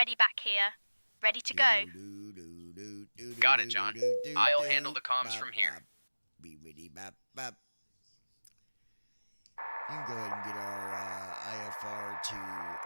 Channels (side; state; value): both; inverted; correlation -1.00